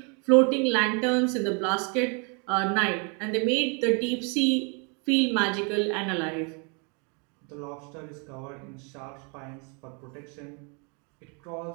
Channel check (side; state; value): left; quieter; 35.1 dB